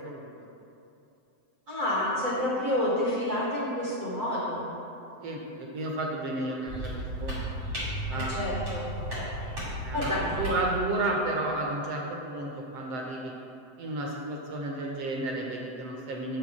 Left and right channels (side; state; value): left; late; 7.8 ms